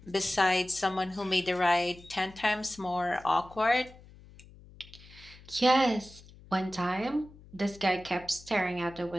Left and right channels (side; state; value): left; noise; hum, 22 dB below the sound